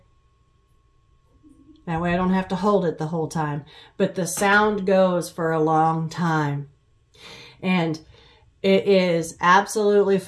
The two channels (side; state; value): both; identical; correlation 1.00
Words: That way I don't have to hold it the whole time. But the sound goes for a long time. And it is absolutely